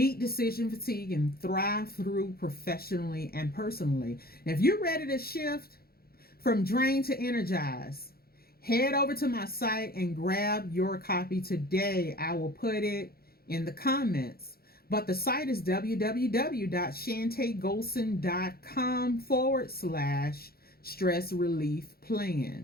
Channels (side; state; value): right; late; 0.44 ms